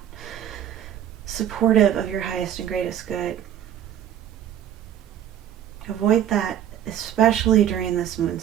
supportive of your highest and greatest good, avoid that, especially during this moon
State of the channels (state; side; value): quieter; left; 10.4 dB